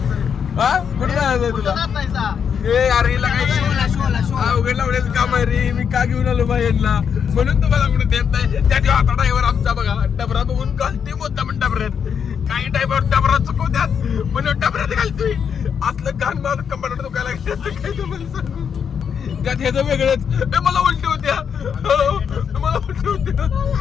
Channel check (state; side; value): quieter; right; 7.3 dB